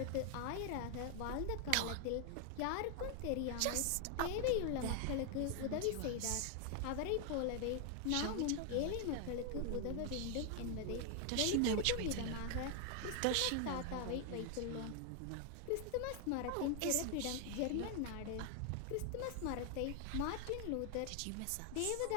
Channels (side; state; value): both; different; correlation 0.00